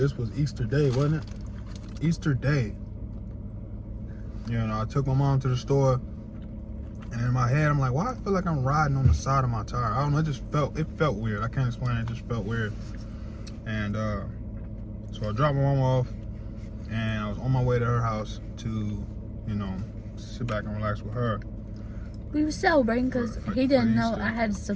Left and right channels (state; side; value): identical; both; correlation 1.00